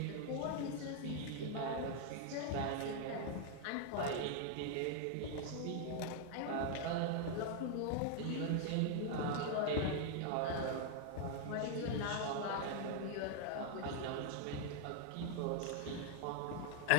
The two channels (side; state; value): both; different; correlation 0.00